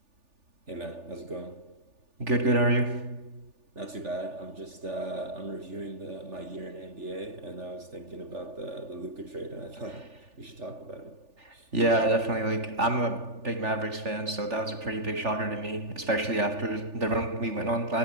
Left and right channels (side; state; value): left; late; 3.4 ms